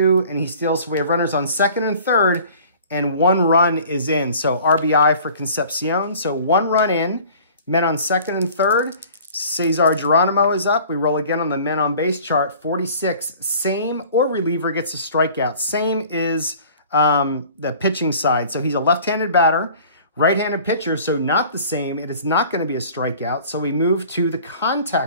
and he steals. So we have runners on second and third, and 1 run is in. So RBI for Concepcion. So 1 run in, men on second and third. Cesar Geronimo is up. We roll again on the men on base chart. 46, same or reliever gets a strikeout. Same is the pitching side. So he's a left-handed batter, right-handed pitcher, so not the same. It is not going to be a strikeout. So we move to the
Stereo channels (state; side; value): inverted; both; correlation -0.48